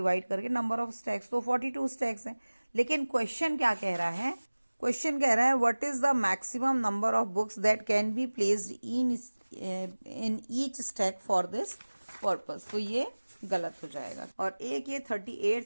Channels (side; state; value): both; inverted; correlation -1.00